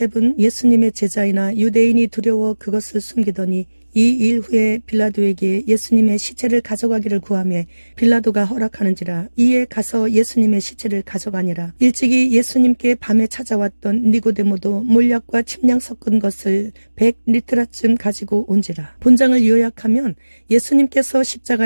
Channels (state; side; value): inverted; both; correlation -1.00